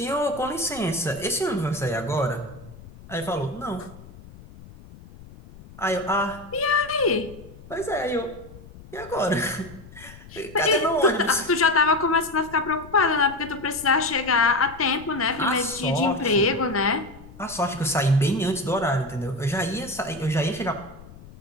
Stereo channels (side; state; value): left; noise; rumble, 19 dB below the sound